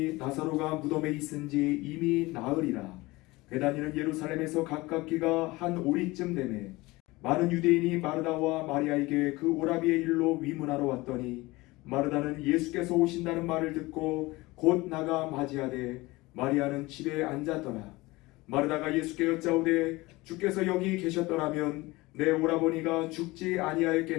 나사로가 무덤에 있은지 이미 나으리라. 베다니는 예루살렘에서 가깝기가 한 오리쯤 되매 많은 유대인이 마르다와 마리아에게 그 오라비의 일로 위문하러 왔더니 마르다는 예수께서 오신다는 말을 듣고 곧 나가 맞이하되 마리아는 집에 앉았더라. 마르다가 예수께 여짜오되 주께서 여기 계셨더라면 내 오라버니가 죽지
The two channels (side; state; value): right; quieter; 21.3 dB